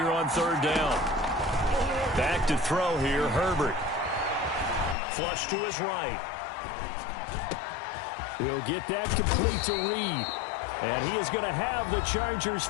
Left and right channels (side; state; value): right; drops out; at 5.0 s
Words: on third down. Back to throw here, Herbert. Flush to his right. He'll get that complete to Reed. And he is going to have the Chargers